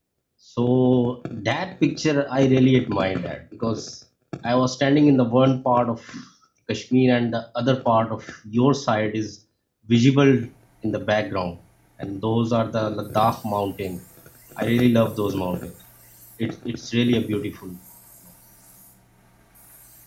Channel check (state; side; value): identical; both; correlation 1.00